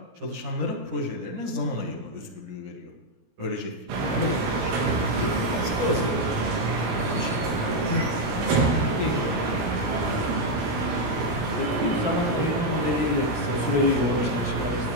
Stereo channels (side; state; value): left; late; 17 ms